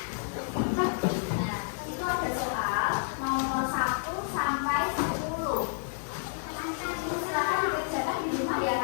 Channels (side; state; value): right; silent; digital silence